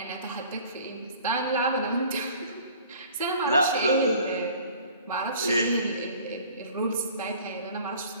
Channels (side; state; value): both; inverted; correlation -0.49